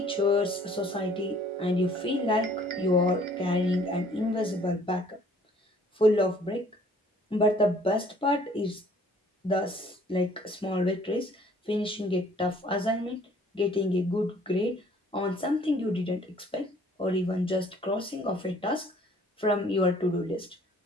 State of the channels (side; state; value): both; normal; correlation 0.57